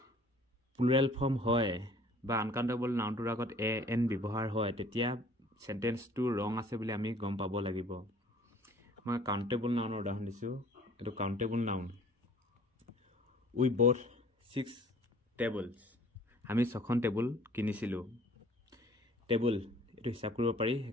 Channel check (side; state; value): both; normal; correlation 0.53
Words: প্লুৰেল ফৰ্ম হয় বা আনকাউণ্টেবল নাউনটোৰ আগত এ এন ব্যৱহাৰ হয় তেতিয়া চেণ্টেন্সটো ৰং আছে বুলি আমি গম পাব লাগিব মই কাউণ্টেবল নাউনৰ উদাহৰণ দিছোঁ এইটো কাউণ্টেবল নাউন উই বথ 6 টেবলছ আমি 6খন টেবুল কিনিছিলোঁ টেবুল এইটো হিচাপ কৰিব পাৰি